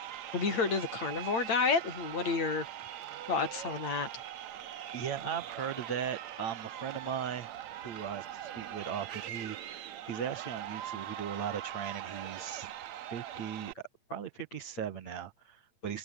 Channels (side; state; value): right; late; 8.8 ms